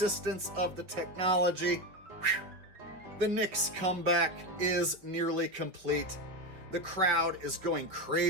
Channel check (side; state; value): left; late; 5.6 ms